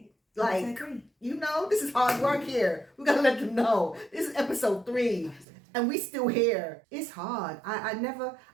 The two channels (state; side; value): drops out; left; at 5.5 s